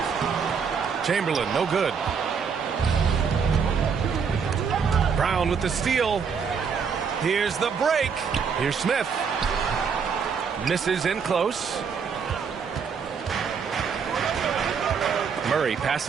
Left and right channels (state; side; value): quieter; left; 6.2 dB